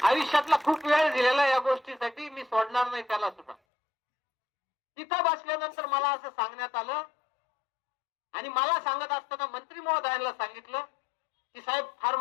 आयुष्यातला खूप वेळ दिलेला या गोष्टीसाठी, मी सोडणार नाही त्याला सुद्धा. तिथं बसल्यानंतर मला असं सांगण्यात आलं, आणि मला सांगत असताना मंत्री महोदयांना सांगितलं की साहेब फार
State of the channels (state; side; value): drops out; right; at 3.6 s